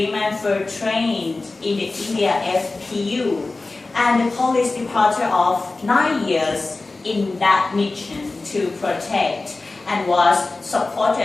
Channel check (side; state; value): right; quieter; 3.4 dB